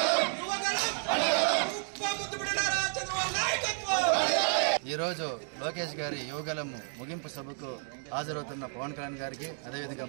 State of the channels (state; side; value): silent; left; 57 dB below the other